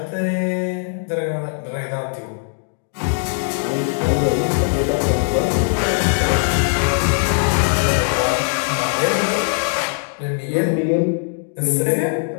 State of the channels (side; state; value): right; silent; digital silence